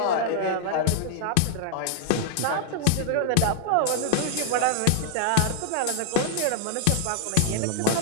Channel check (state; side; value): different; both; correlation 0.00